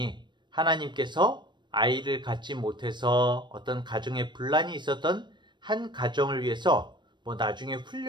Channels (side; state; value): left; late; 0.22 ms